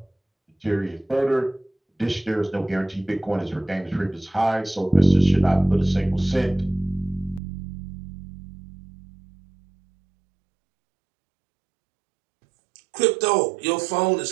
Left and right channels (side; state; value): left; drops out; at 7.4 s